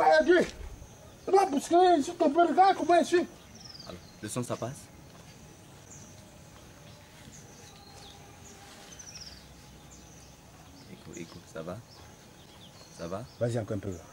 aider. Il va bousculer, s'il te plaît, regarde comment il suit. Le son, ça passe? Écoute, ça va? Ça va? Vas-y encore un peu.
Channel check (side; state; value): both; identical; correlation 1.00